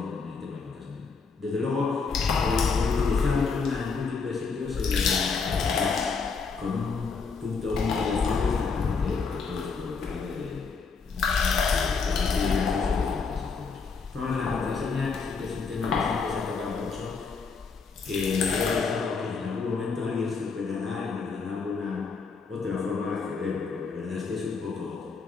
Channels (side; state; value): right; quieter; 4.9 dB